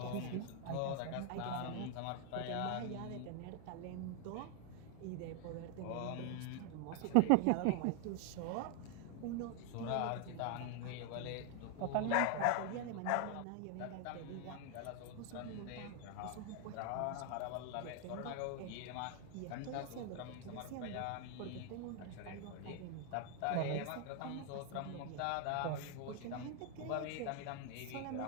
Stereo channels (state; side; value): different; both; correlation 0.00